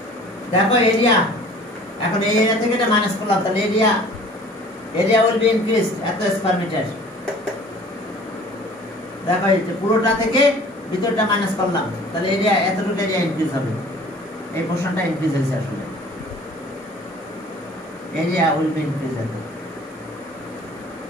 দেখো এরিয়া এখন এই এরিয়া থেকে এটা মাইনাস করলাম তাহলে এরিয়া will be increased এত স্কয়ার মিটার দেখো এই পুরোটা থেকে ভিতরটা মাইনাস করলাম তাহলে এরিয়া এতটুকু এরিয়া ইনক্রিজ হবে এই পোরশনটা ইনক্রিজ হয়েছে আসলে এরিয়া will be increased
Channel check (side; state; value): both; normal; correlation 0.48